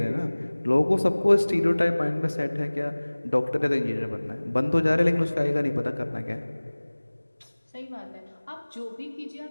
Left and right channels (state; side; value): inverted; both; correlation -1.00